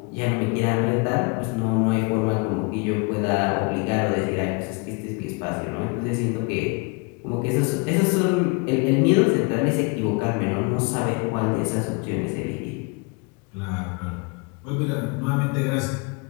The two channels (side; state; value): right; quieter; 30.9 dB